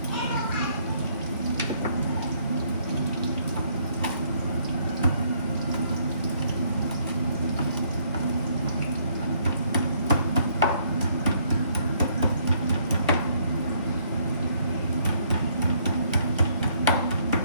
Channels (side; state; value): both; inverted; correlation -0.67